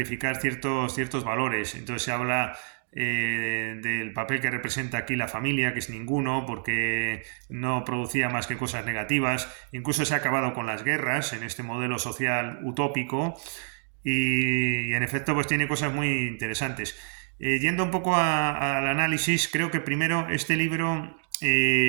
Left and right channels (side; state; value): left; silent; 56 dB below the other